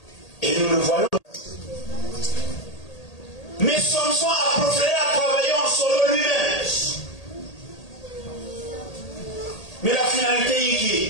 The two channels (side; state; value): right; late; 1.8 ms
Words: Et nous le voyons. Mais Samson a préféré à travailler en solo lui-même. Mais la